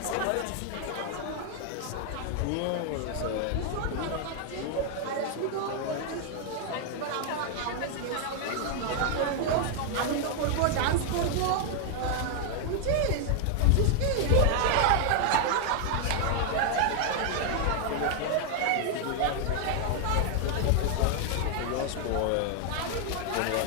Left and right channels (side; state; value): both; different; correlation 0.00